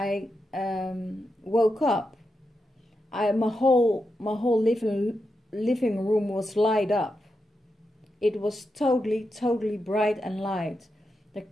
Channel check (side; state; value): both; normal; correlation 0.87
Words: woke up, my whole living room was light up. It was totally bright and light. There